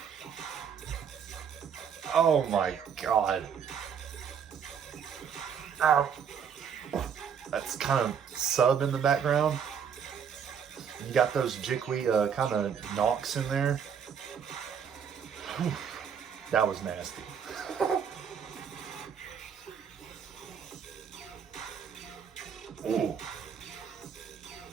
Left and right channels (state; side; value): quieter; left; 7.5 dB